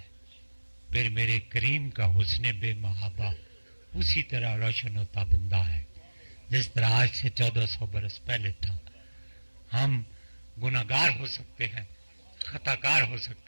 پھر میرے کریم کا حسن بے محابہ اسی طرح روشن و تابندہ ہے جس طرح آج سے 1400 برس پہلے تھا. ہم گناہگار ہو سکتے ہیں, خطا کار ہو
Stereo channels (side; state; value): both; inverted; correlation -1.00